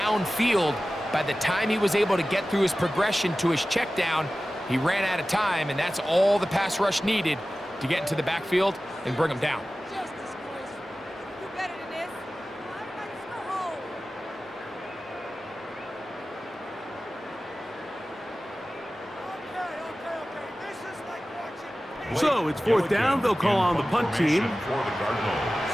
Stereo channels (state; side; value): normal; both; correlation 0.96